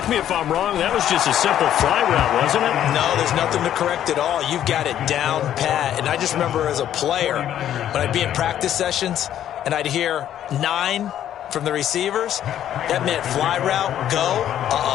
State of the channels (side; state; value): right; quieter; 11.0 dB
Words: me if I'm wrong, that was just a simple fly route, wasn't it? No, there's nothing to correct at all. You've got it down pat. And I just remember as a player, when I'd be in practice sessions and I'd hear 9 from the receivers, that meant fly route, go.